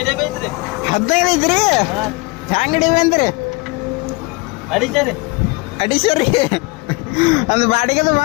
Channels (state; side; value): quieter; right; 25.4 dB